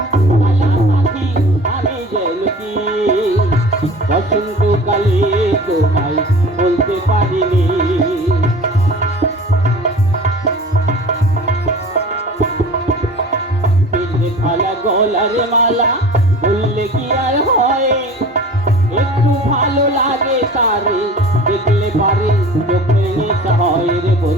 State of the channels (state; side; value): normal; both; correlation 0.41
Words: কালা পাখি, আমি যেন কি বসন্তকালে তোমায় বলতে পারিনি। পিঠে খালা গলার মালা বললে কি আর হয়, একটু ভালো লাগে তারে দেখলে পারে, চোখে নেশা হয় রে